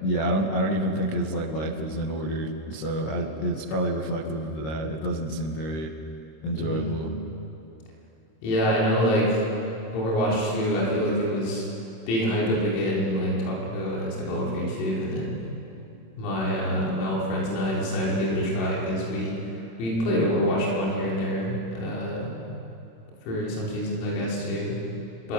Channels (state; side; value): late; right; 26 ms